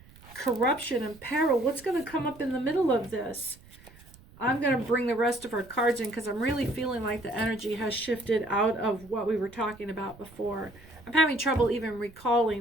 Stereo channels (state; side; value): noise; right; rumble, 23 dB below the sound